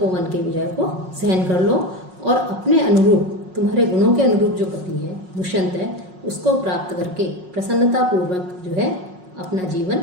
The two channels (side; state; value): left; late; 5.5 ms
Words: के विजय को सहन कर लो और अपने अनुरूप, तुम्हारे गुणों के अनुरूप जो पति है दुष्यंत है, उसको प्राप्त करके प्रसन्नतापूर्वक जो है अपना